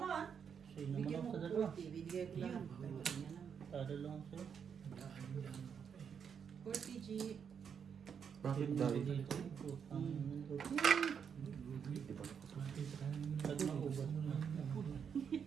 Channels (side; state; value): left; quieter; 7.2 dB